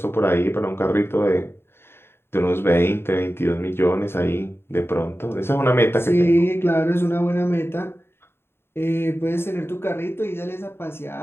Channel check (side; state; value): right; late; 0.11 ms